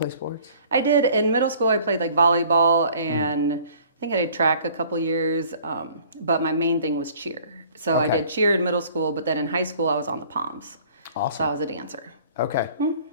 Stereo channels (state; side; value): inverted; both; correlation -0.53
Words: sports? I did. In middle school, I played like volleyball and I think I did track a couple years, but my main thing was cheer. So I did cheer in middle school, but then in high school, I was on the Poms. Awesome. So I was a dancer. Okay.